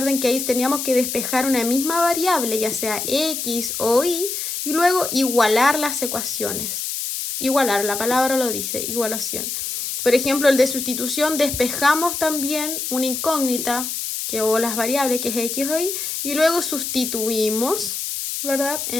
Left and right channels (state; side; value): noise; left; hiss, 4 dB below the sound